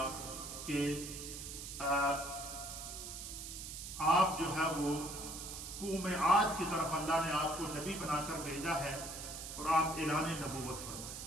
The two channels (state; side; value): noise; right; hiss, 8 dB below the sound